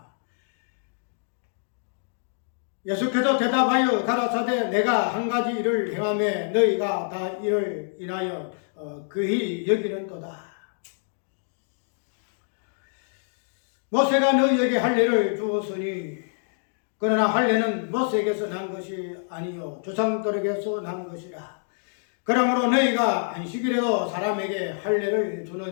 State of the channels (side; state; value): right; silent; digital silence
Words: 예수께서 대답하여 가라사대 내가 한 가지 일을 행하매 너희가 다 이를 인하여 그히 여기는도다. 모세가 너희에게 할례를 주었으니 그러나 할례는 모세에게서 난 것이 아니요 조상들에게서 난 것이라. 그러므로 너희가 안식일에도 사람에게 할례를